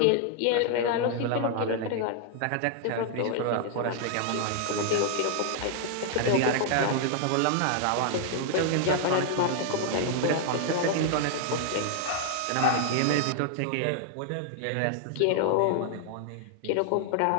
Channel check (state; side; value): different; both; correlation 0.00